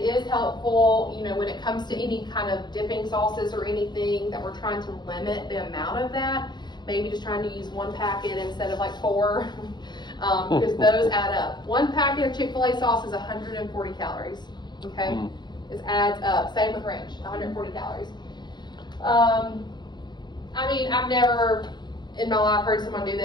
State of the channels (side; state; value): right; late; 0.21 ms